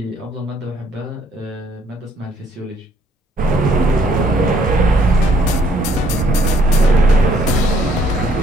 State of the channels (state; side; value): normal; both; correlation 0.66